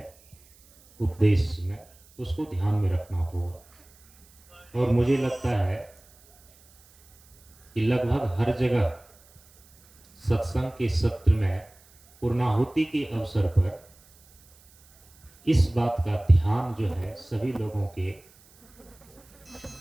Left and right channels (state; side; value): noise; right; hiss, 28 dB below the sound